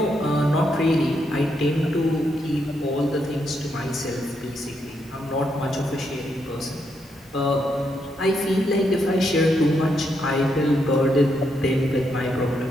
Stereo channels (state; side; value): normal; both; correlation 0.79